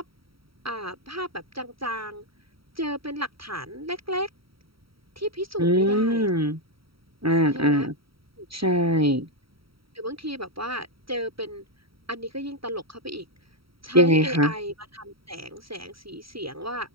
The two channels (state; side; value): late; left; 0.75 ms